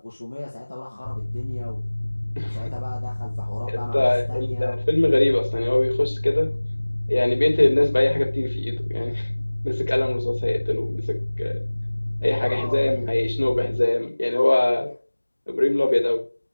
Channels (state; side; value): inverted; both; correlation -1.00